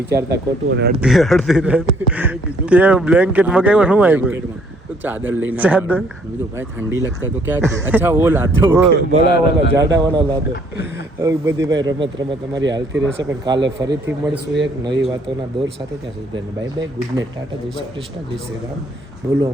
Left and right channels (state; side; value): normal; both; correlation 0.64